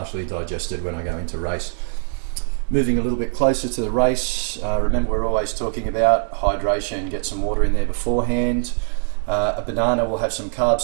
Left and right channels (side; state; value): left; silent; digital silence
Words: digested when I go into race. Moving a little bit closer to the race, remember we're always talking about hydration. Get some water in there beforehand. A banana will have some carbs,